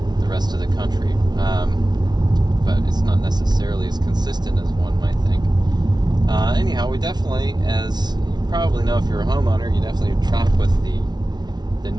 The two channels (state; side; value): late; left; 0.20 ms